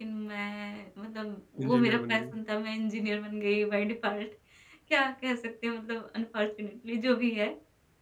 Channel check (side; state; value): both; identical; correlation 1.00